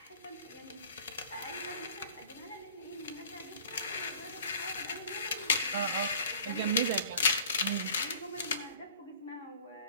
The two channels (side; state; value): both; inverted; correlation -0.48